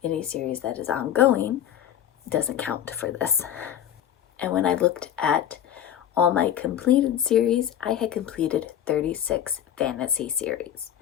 any series that is ongoing doesn't count for this. And when I looked at all my completed series, I had completed 36 fantasy series.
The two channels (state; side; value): quieter; right; 10.4 dB